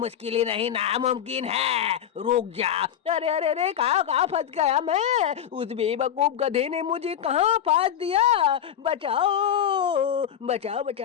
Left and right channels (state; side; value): quieter; right; 9.6 dB